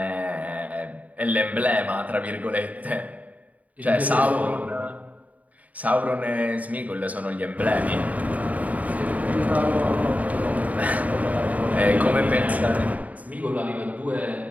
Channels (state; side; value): late; left; 0.071 ms